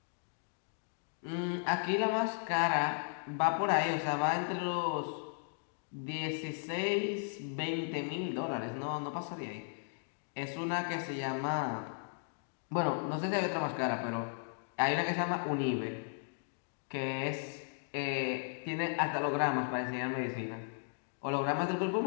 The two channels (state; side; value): silent; right; digital silence